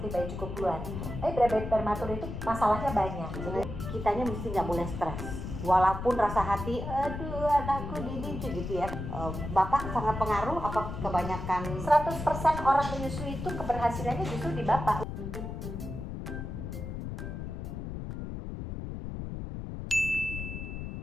bayi cukup bulan. Tapi bayi prematur itu masalahnya banyak. Jadi kitanya mesti nggak boleh stres. Walaupun rasa hati, aduh anakku ini gitu ya. Bapak sangat pengaruh apa kebanyakan? 100% orang menyusui itu keberhasilannya justru di bapak.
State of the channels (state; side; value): noise; left; rumble, 6 dB below the sound